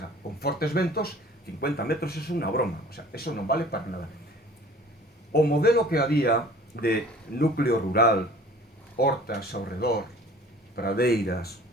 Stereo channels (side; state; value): both; normal; correlation 0.48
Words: con fortes ventos, 50 metros é unha broma, o sea, eso non vale para nada. O modelo que había de núcleo rural, hortas ao redor, pradeiras,